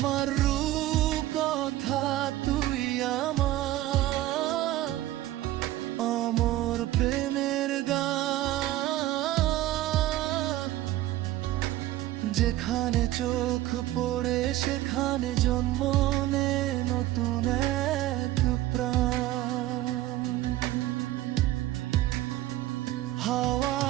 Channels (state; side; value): quieter; left; 15.4 dB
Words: রূপকথা, তুই আমার অমর প্রেমের গান। যেখানে চোখ পড়ে সেখানে জন্ম নে নতুন এক প্রাণ।